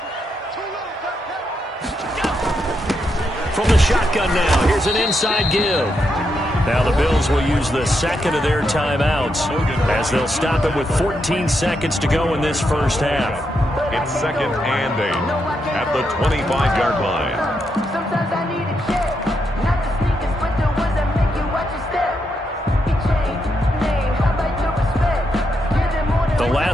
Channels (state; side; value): normal; both; correlation 0.81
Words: From the shotgun now, here's an inside give. Now the Bills will use the second of their timeouts as they'll stop it with 14 seconds to go in this first half. It's 2nd and 8 at the 25-yard line. The